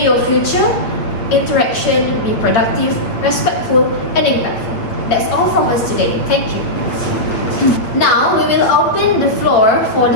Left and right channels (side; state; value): right; late; 8.4 ms